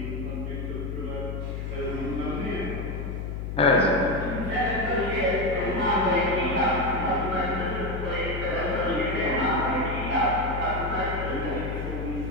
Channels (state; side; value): noise; left; hum, 4 dB below the sound